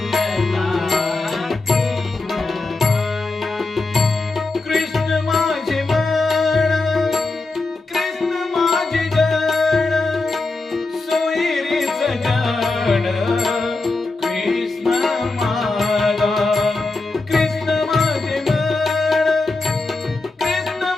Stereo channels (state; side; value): quieter; right; 3.3 dB